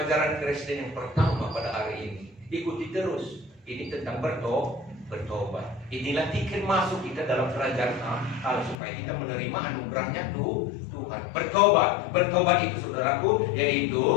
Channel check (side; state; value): right; drops out; at 8.8 s